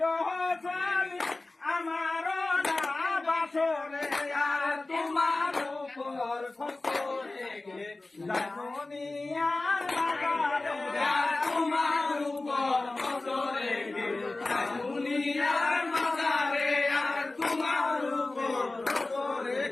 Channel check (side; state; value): right; quieter; 3.1 dB